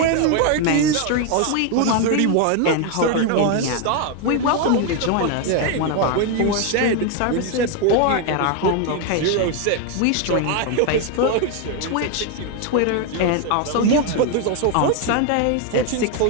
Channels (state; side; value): different; both; correlation 0.01